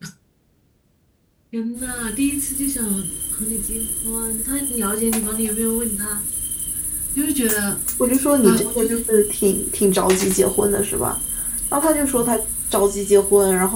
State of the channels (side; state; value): both; identical; correlation 1.00